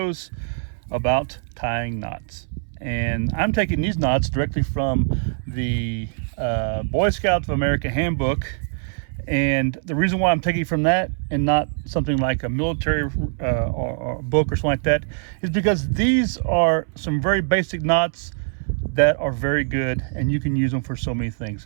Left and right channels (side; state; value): left; silent; 62 dB below the other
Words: about tying knots. And I'm taking these knots directly from the Boy Scouts of America Handbook. And the reason why I'm taking from that and not something like a military or book or something like that is because these are some very basic knots that are very good and you can use them for so many things.